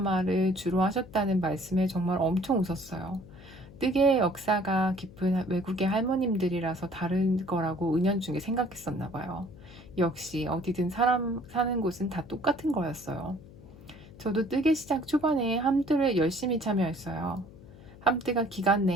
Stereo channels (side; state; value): left; noise; hum, 19 dB below the sound